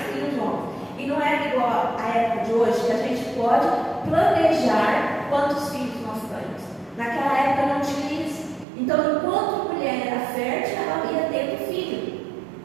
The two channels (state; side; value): drops out; left; at 8.7 s